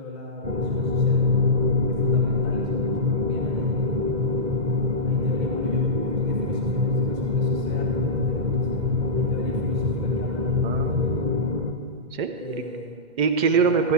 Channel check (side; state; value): left; late; 2.1 ms